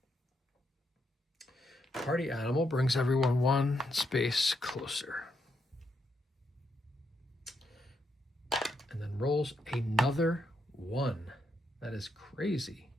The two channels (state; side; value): normal; both; correlation 0.80